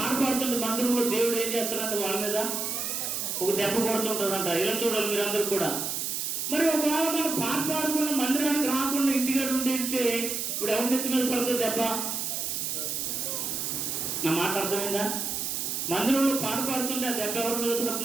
పాడుతుంటే మందిరంలో దేవుడు ఏం చేస్తారంటే వాళ్ళ మీద ఒక దెబ్బ కొడుతుంటారంట. ఇలా చూడాలి మీరందరూ కూడా. మరి ఒకవేళ మనం పాట పాడకుండా మందిరానికి రాకుండా ఇంటిగా ఉంటే ఇప్పుడు ఎవరి నెత్తి మీద పడుతుంది దెబ్బ? నా మాట అర్థమైందా? మందిరంలో పాట పాడుతుంటే ఆ దెబ్బ ఎవరి మీద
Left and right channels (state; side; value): noise; right; hiss, 2 dB below the sound